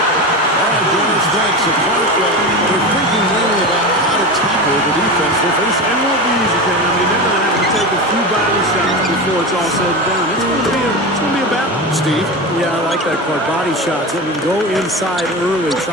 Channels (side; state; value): both; normal; correlation 0.24